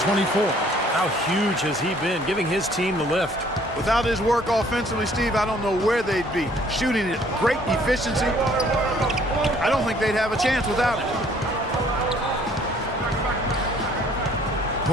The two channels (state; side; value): normal; both; correlation 0.59